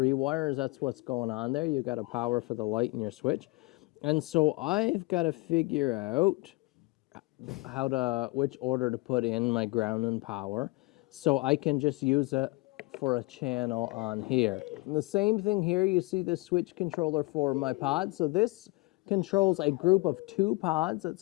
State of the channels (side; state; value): right; quieter; 24.1 dB